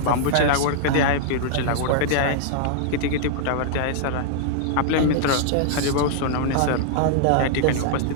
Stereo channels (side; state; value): both; different; correlation -0.01